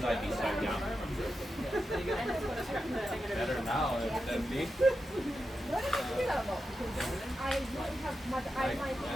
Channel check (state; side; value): normal; both; correlation 0.89